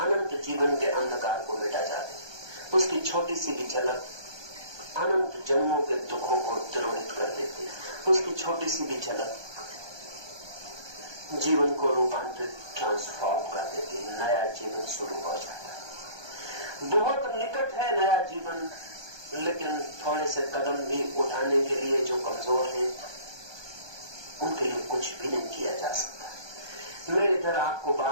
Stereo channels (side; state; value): left; late; 1.2 ms